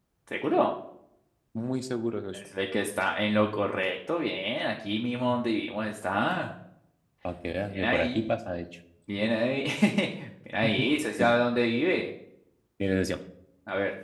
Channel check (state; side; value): identical; both; correlation 1.00